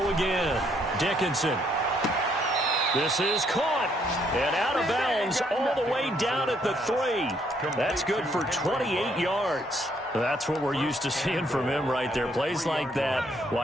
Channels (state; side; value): normal; both; correlation 0.70